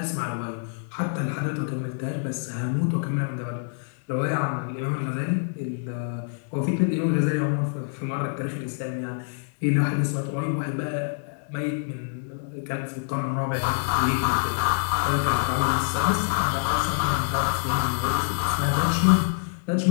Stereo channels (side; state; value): right; silent; digital silence